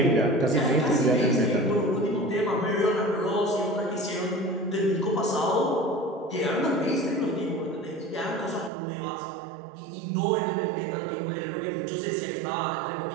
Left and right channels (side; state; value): left; drops out; at 8.7 s